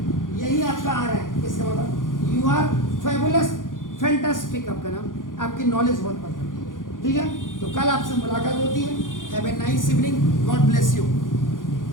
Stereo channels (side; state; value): right; late; 0.89 ms